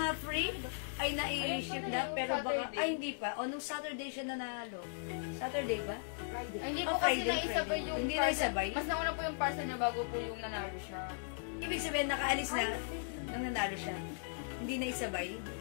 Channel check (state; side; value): silent; right; digital silence